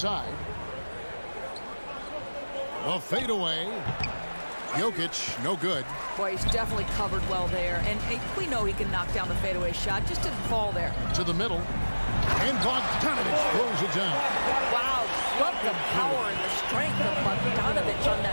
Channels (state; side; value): inverted; both; correlation -1.00